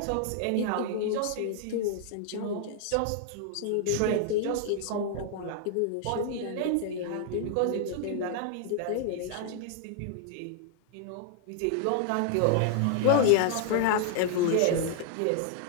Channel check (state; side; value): different; both; correlation 0.00